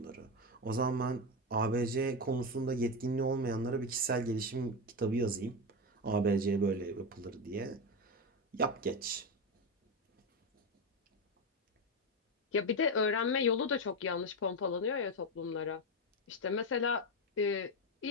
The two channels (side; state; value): both; normal; correlation 0.13